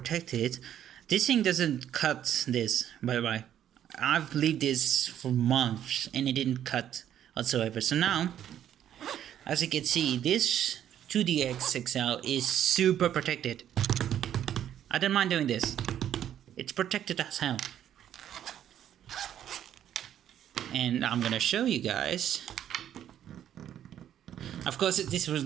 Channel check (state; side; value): quieter; left; 10.6 dB